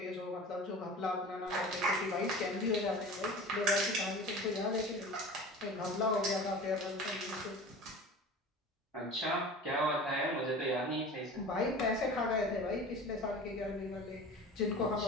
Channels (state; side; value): normal; both; correlation 0.37